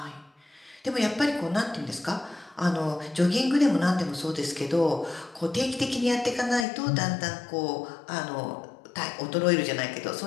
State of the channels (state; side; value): drops out; right; at 6.7 s